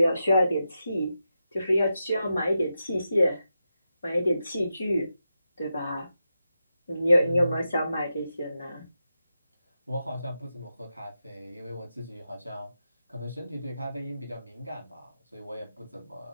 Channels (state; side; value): inverted; both; correlation -0.88